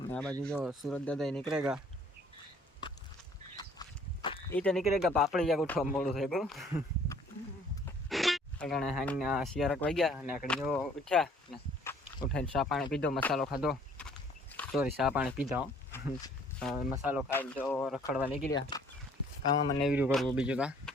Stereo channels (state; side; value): normal; both; correlation 0.57